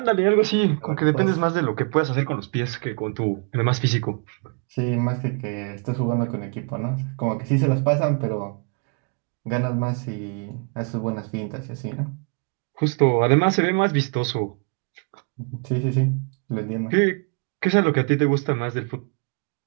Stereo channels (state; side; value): quieter; left; 37.4 dB